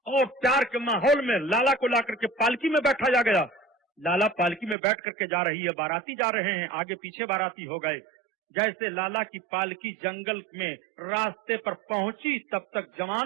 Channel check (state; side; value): drops out; left; at 4.8 s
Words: और प्यार के माहौल में लाला को ला करके पालकी में बैठाया गया। लाला पालकी में बैठ करके जा रही है, बाराती जा रहे हैं, आगे पीछे बाराती हो गए। जैसे लाला की पालकी जंगल में रास्ते पर पहुंची, तब तक